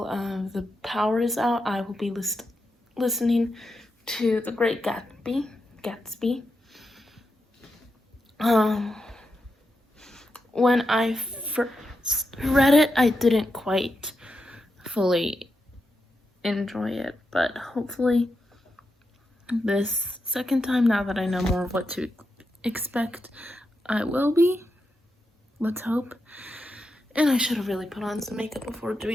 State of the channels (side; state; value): both; normal; correlation 0.86